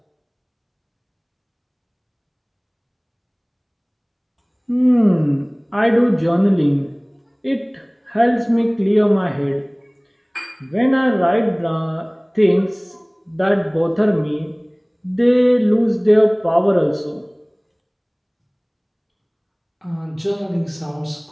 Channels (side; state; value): both; identical; correlation 1.00